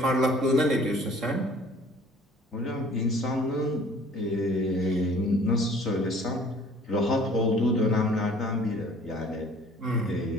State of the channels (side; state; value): both; normal; correlation 0.52